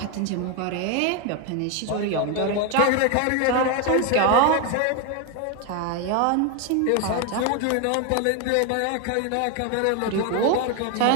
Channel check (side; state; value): both; different; correlation 0.01